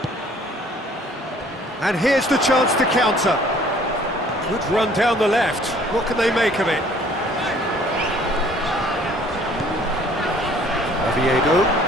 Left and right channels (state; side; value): normal; both; correlation 0.56